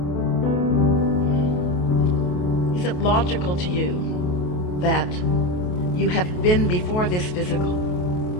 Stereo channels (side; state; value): right; late; 28 ms